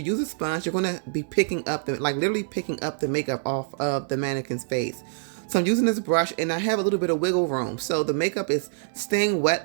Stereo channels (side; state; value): left; silent; digital silence